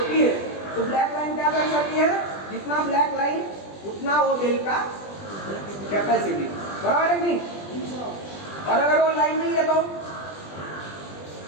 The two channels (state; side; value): late; right; 20 ms